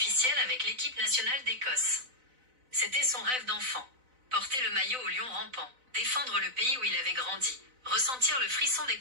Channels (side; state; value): left; late; 4.0 ms